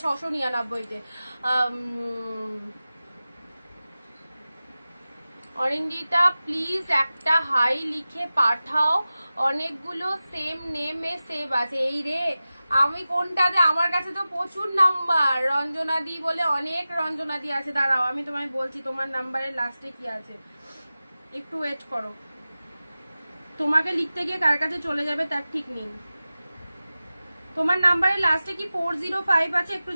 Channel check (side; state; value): both; inverted; correlation -0.96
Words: 699-তে। অরিন্দিতা প্লিজ একটা হাই লিখে পাঠাও, অনেকগুলো সেম নেমে সেভ আছে। এই রে আমি কোনটাতে, আমার কাছে তো প্রচুর নাম্বার, রঞ্জনাদি বলে অনেক রঞ্জনাদি আছে, দাঁড়াও আমি তোমায় বলছি তোমার নাম্বারের লাস্টে কি আছে, একটু ওয়েট করো, তোমাকে লিখতে গিয়ে কার কাছে চলে যাবে তার ঠিক নেই। তোমার নাম্বারের লাস্টে কি 405 আছে একটু